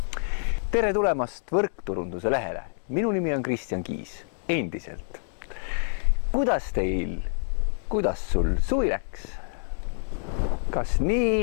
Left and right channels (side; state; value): right; silent; 60 dB below the other